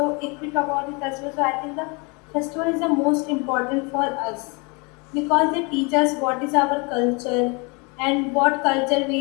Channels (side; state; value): right; quieter; 30.5 dB